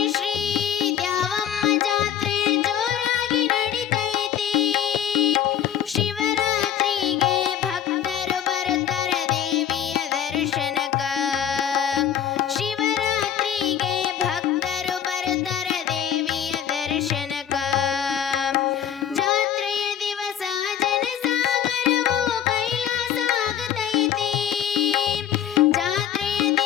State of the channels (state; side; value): quieter; right; 9.7 dB